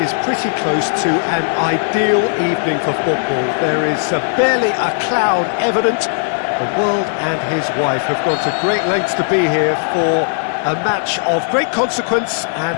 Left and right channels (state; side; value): silent; right; digital silence